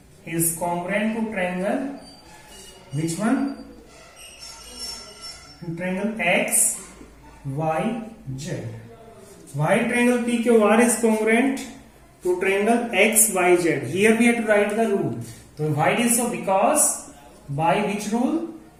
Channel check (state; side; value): identical; both; correlation 1.00